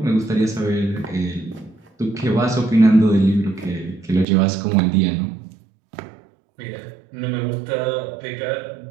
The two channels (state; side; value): drops out; left; at 4.2 s